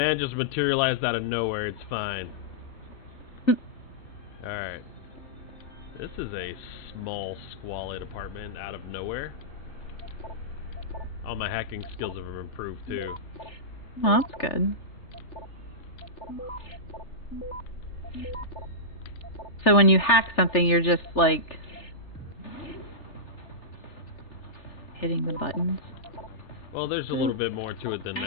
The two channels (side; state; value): right; late; 3.4 ms